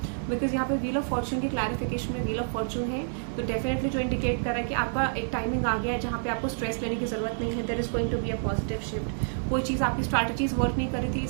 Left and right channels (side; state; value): left; silent; 59 dB below the other